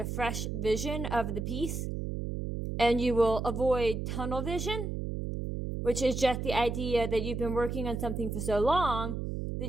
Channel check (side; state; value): right; noise; hum, 4 dB below the sound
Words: fresh vision of the piece, and you will avoid tunnel vision, which is just the idea that you've been working on something for so long that